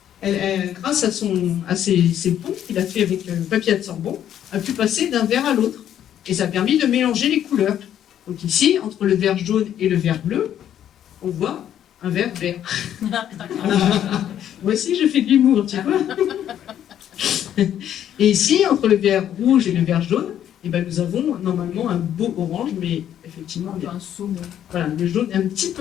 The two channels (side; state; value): right; quieter; 10.4 dB